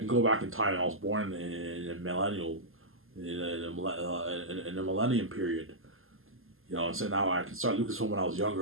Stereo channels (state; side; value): late; left; 0.60 ms